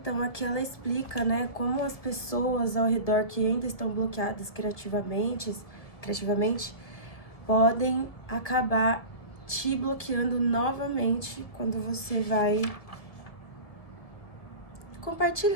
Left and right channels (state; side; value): late; right; 1.7 ms